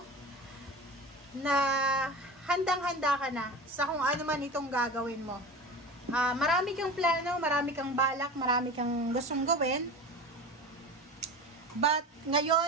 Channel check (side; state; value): both; normal; correlation 0.31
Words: na handang-handa ka na sa kung ano man itong gagawin mo. Marami kang plano, marami kang balak, marami kang gustong gawin. But